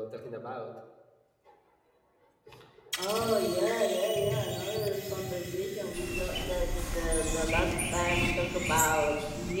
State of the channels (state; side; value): identical; both; correlation 1.00